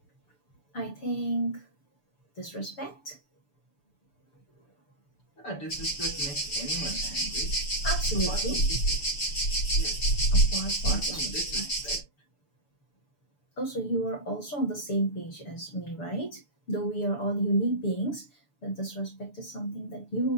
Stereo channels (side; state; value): right; late; 6.9 ms